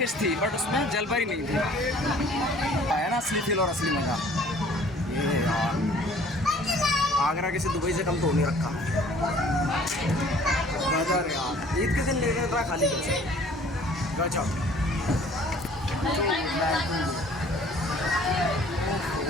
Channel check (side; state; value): both; normal; correlation 0.53